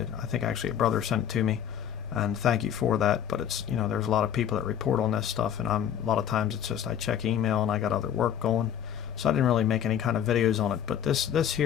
I think actually a brother sent it to me, and thank you for that. But it's there's a lot of people that report on this stuff, and a lot of times it's just I check email and I got other work going, so I didn't really make any kind of videos on it. But this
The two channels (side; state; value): right; quieter; 9.4 dB